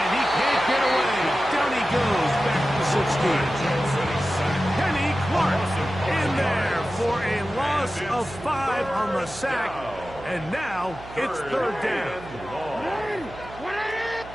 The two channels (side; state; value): right; noise; hum, 17 dB below the sound